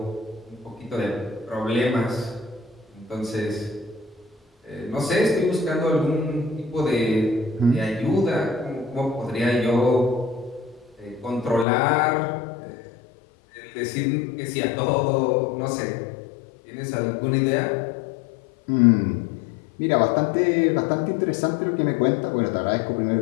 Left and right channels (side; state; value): right; drops out; at 11.7 s